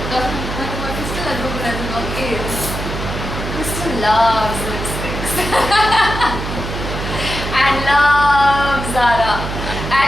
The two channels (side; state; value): right; noise; hum, 6 dB below the sound